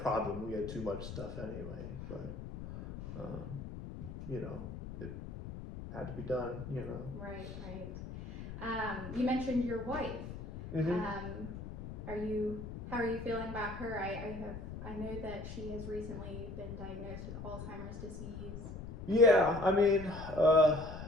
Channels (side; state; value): left; noise; rumble, 9 dB below the sound